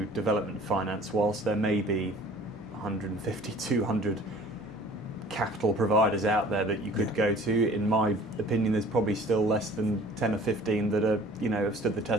development finance, whilst there may be 150, 200 capital providers out there that you could go to, in my opinion, there's probably still less than 10 or 15 that are, have stood the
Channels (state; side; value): normal; both; correlation 0.48